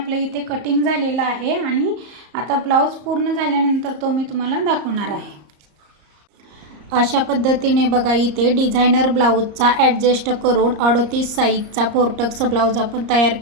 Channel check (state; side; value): late; left; 34 ms